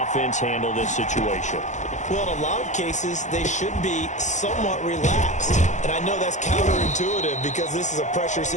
offense handle this situation? Well, in a lot of cases, they should be somewhat relaxed. And I know that's counterintuitive because this is a pressure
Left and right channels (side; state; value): right; late; 0.35 ms